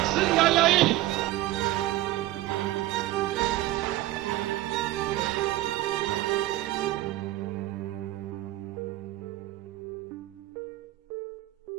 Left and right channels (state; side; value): quieter; left; 16.5 dB